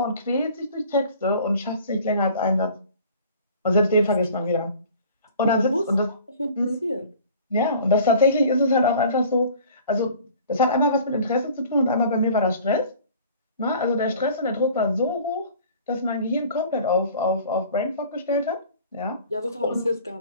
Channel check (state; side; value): inverted; both; correlation -0.47